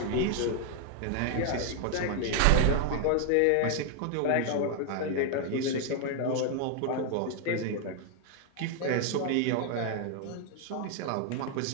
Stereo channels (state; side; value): different; both; correlation 0.00